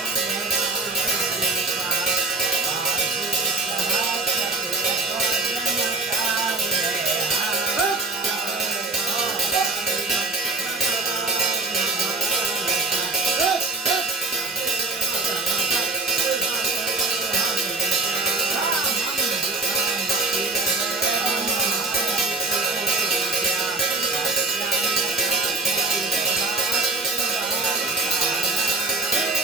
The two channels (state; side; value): quieter; left; 3.2 dB